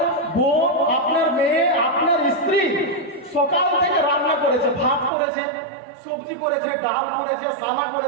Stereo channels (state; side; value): drops out; left; at 5.1 s